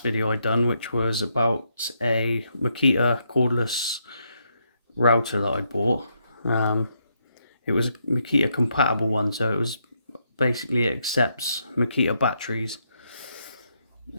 video I done, which was about a Makita cordless router that I bought. It was a Makita compatible one, so it accepts Makita batteries,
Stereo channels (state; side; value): inverted; both; correlation -0.78